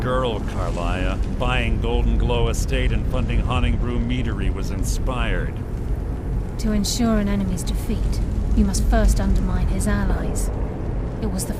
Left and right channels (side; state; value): both; identical; correlation 1.00